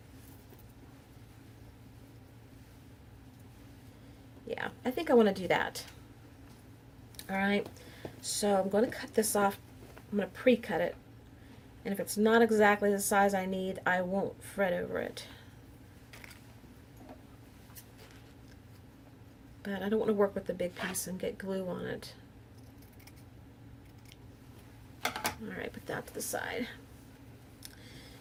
Yeah, I think I want to do that. Alright. So I'm going to cut this off. I'm going to pre-cut it. And if it's not exactly the size I need, I won't fret over it. But I don't want to work with the big piece and get glue on it. Alright, put that to the side.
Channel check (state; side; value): identical; both; correlation 1.00